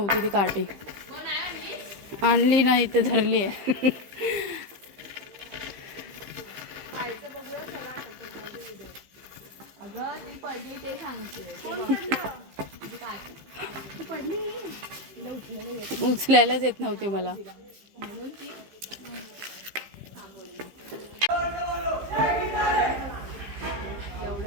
ती काठी. आणली नाही, इथे धरली आहे. अगं ती पडली ते सांगते. उचलायलाच येत नव्हती मला.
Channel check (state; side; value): late; left; 15 ms